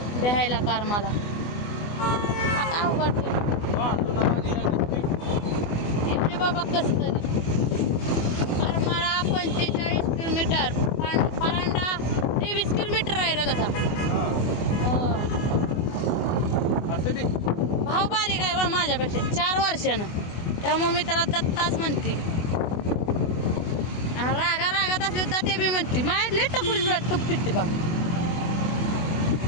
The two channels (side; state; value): right; late; 24 ms